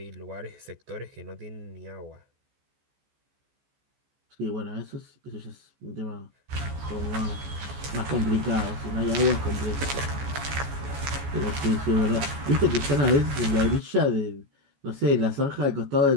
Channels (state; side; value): late; left; 14 ms